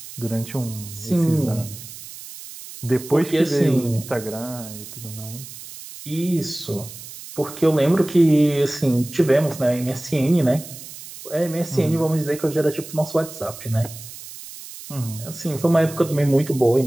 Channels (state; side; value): noise; right; hiss, 14 dB below the sound